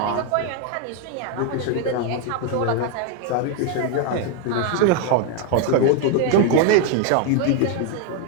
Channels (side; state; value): both; different; correlation 0.01